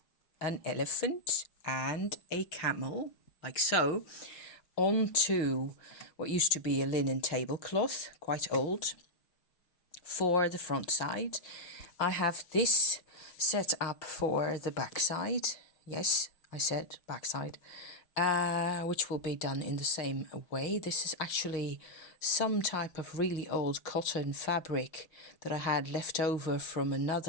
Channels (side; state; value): right; late; 5.8 ms